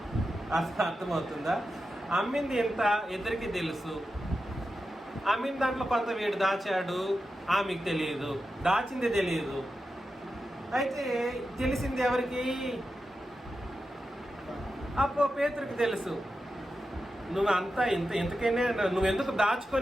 అర్థమవుతుందా? అమ్మింది ఎంత ఇద్దరికి తెలుసు. అమ్మిన దాంట్లో కొంత వీడు దాచాడు, ఆమెకు తెలియదు. దాచింది తెలియదు. అయితే తెలిసింది ఎవరికి? అప్పో పేతురికి తెలుసు. నువ్వు అంతా ఇంతకైనా నువ్వెందుకు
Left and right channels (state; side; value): normal; both; correlation 0.90